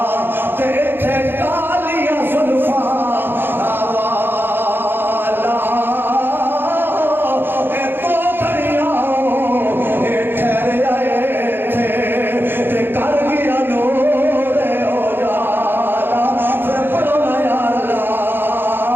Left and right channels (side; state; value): left; late; 0.10 ms